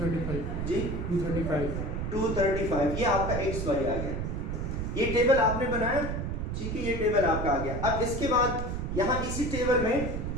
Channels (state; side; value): noise; right; rumble, 3 dB below the sound